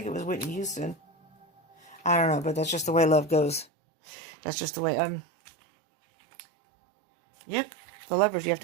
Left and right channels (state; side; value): drops out; left; at 3.7 s